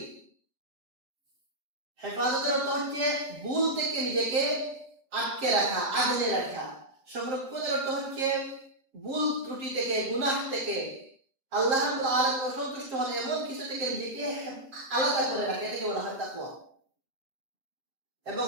হেফাজতের অর্থ হচ্ছে ভুল থেকে নিজেকে আটকে রাখা, আগলে রাখা। সংরক্ষণের অর্থ হচ্ছে ভুল ত্রুটি থেকে, গুনাহ থেকে, আল্লাহ রাব্বুল আলামিন অসন্তুষ্ট হন এমন কিছু থেকে নিজেকে আলাদা করে রাখা, এটাকে বলা হয় তাকওয়া। এবং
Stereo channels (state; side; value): late; left; 7.4 ms